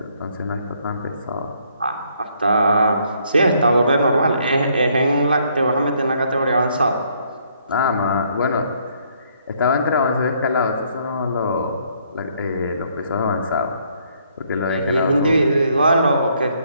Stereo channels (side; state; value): both; inverted; correlation -0.68